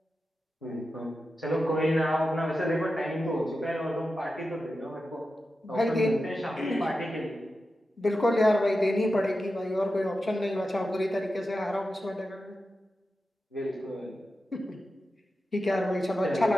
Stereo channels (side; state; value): both; normal; correlation 0.91